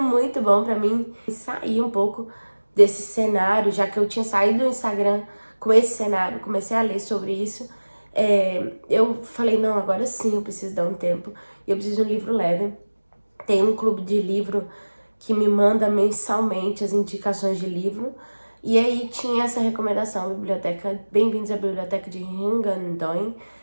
muito bom pra mim sair um pouco desse cenário, já que eu tinha saído do Instagram com esse cenário, comecei a ler sobre isso. Eu falei, não, agora sim eu preciso dar um tempo e eu preciso de um livro leve. Tem um clube de livro que me manda mensalmente as indicações de livro. E aí tinha essa recomendação, biblioteca, Bem-vindos à Biblioteca de Hungandoy.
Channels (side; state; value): both; inverted; correlation -1.00